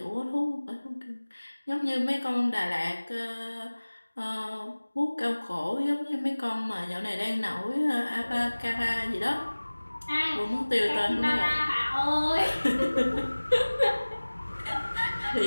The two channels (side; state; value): both; inverted; correlation -1.00